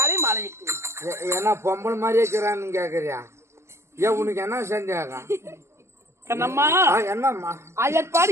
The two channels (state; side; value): late; left; 0.13 ms